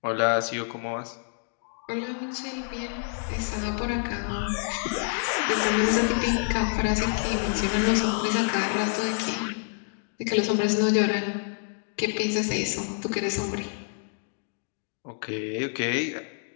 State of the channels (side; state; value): right; silent; 59 dB below the other